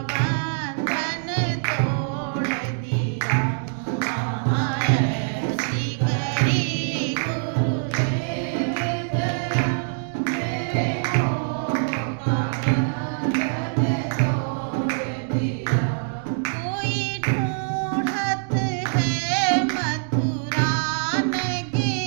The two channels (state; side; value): silent; left; digital silence